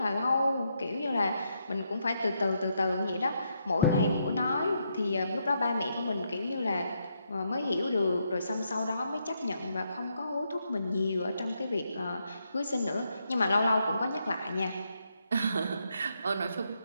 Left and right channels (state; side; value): inverted; both; correlation -0.79